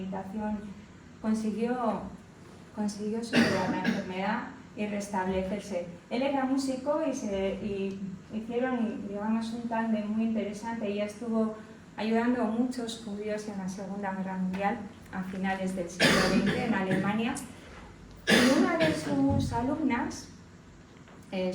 consiguió superar la enfermedad y restablecerse. Él era músico y hicieron, digamos, un tándem muy interesante. Ella estuvo ayudando a muchos judíos en la Segunda Guerra Mundial a finales del siglo XX en Alemania. Y una de sus alumnas,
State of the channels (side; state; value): both; identical; correlation 1.00